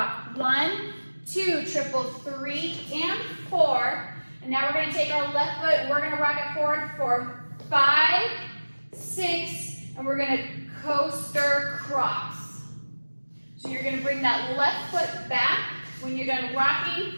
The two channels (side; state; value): both; inverted; correlation -1.00